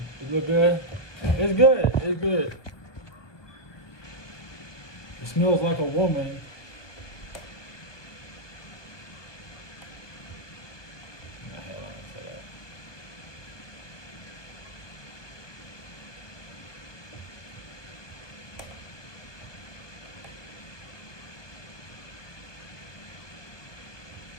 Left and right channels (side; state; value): right; late; 1.2 ms